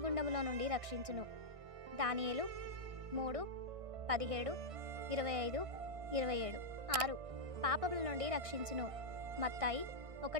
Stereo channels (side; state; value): left; late; 1.6 ms